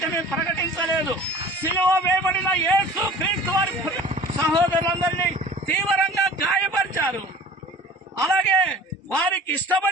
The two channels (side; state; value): both; normal; correlation 0.44